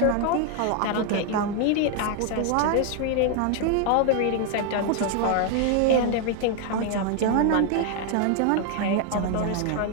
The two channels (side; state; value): both; different; correlation 0.00